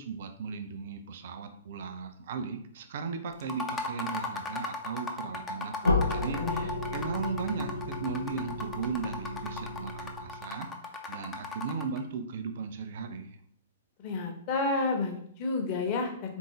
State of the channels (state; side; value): inverted; both; correlation -0.39